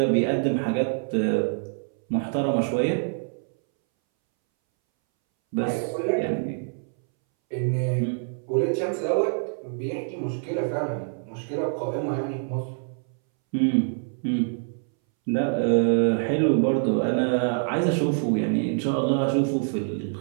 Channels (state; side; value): silent; left; 61 dB below the other